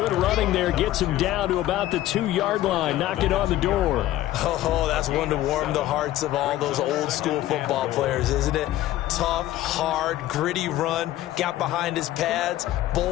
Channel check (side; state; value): right; quieter; 14.5 dB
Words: running there gets them down to about the 2-yard line. Knock it on the door. Oh, that's one to warm the hearts of all those old school football players, isn't it? Tough, hard, gritty run. Got behind his pads,